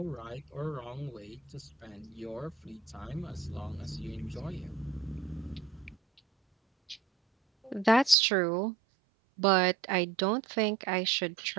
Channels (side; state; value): left; drops out; at 8.2 s